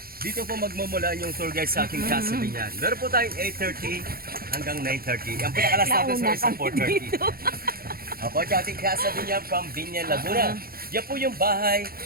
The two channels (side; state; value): left; late; 0.43 ms